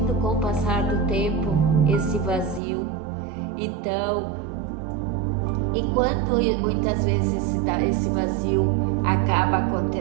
com o passar do tempo esse vazio. Então, e quando muitas vezes esse vazio acaba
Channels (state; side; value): drops out; left; at 2.6 s